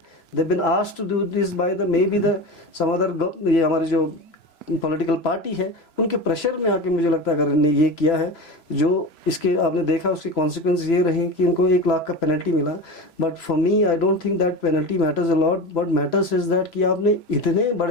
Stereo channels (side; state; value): right; late; 3.0 ms